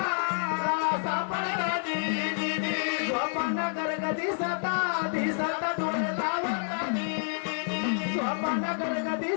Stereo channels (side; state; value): right; silent; 56 dB below the other